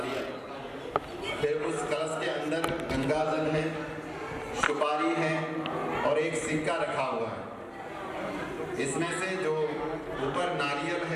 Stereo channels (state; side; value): identical; both; correlation 1.00